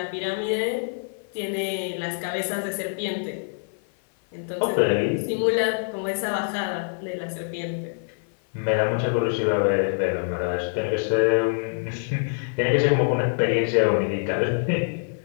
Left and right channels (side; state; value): right; silent; 56 dB below the other